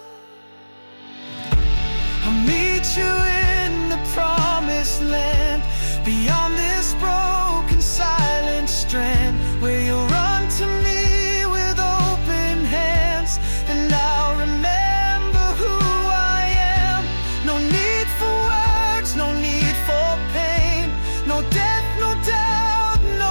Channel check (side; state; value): both; inverted; correlation -1.00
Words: I'll meet you in the promised land, beyond this broken silent strand, where you'll run to me with open hands, and I'll remember who I am. No need for words, no need for pain, no death, no doubt,